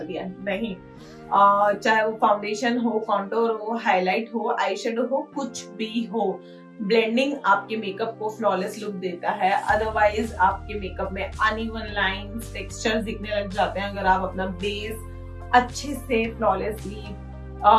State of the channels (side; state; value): both; identical; correlation 1.00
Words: दिया, नहीं। चाहे वो फाउंडेशन हो, कॉन्टोर हो, हाईलाइट हो, आई शेडो हो, कुछ भी हो, ब्लेंडिंग आपके मेकअप को फ्लॉलेस लुक देता है। अदरवाइज आपके मेकअप में अनइवन लाइंस, टेक्सचर्स दिखने लग जाते हैं अगर आप अपना बेस अच्छे से फ्लॉलेसली